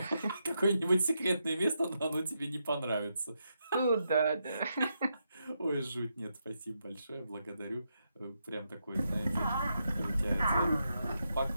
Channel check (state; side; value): inverted; both; correlation -0.83